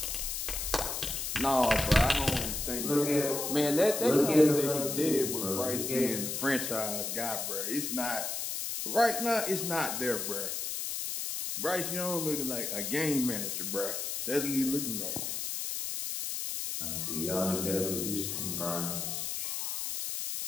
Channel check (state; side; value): noise; left; hiss, 3 dB below the sound